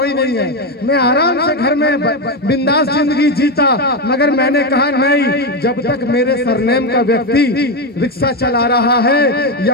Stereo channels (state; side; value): normal; both; correlation 0.10